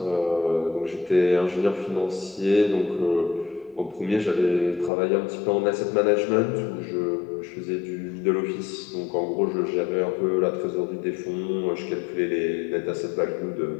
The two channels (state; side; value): drops out; right; at 4.9 s